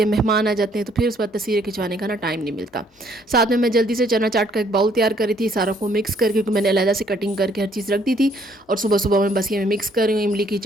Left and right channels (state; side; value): normal; both; correlation 0.65